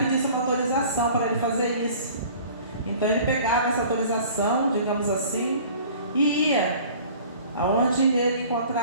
uma autorização para ele fazer isso. Então ele pegava essa autorização, digamos assim, e ia aonde ele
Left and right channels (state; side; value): inverted; both; correlation -0.47